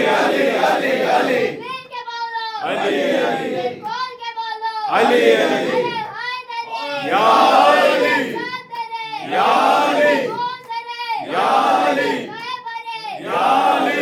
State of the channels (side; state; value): both; identical; correlation 1.00